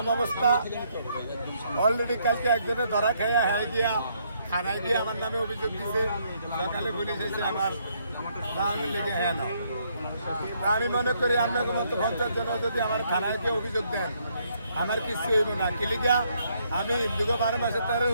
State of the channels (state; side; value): inverted; both; correlation -0.71